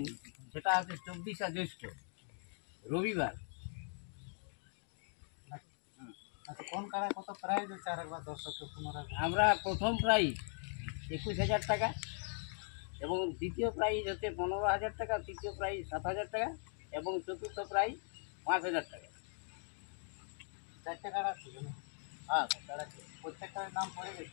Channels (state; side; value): silent; right; 51 dB below the other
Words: সেটা হচ্ছে 24শে জ্যৈষ্ঠ রবিবার। আচ্ছা কোন কাড়ায় কত প্রাইজ হচ্ছে আর একবার দর্শককে পুনরায়? আমরা প্রথম প্রাইজ 21,000 টাকা এবং দ্বিতীয় প্রাইজ হচ্ছে 15,000 টাকা, তৃতীয় প্রাইজ 7,000 টাকা এবং চতুর্থ প্রাইজ 5,000 টাকা। চারটে কাড়া ছিল না? হ্যাঁ কাড়া প্রত্যেকটার নাম পড়ে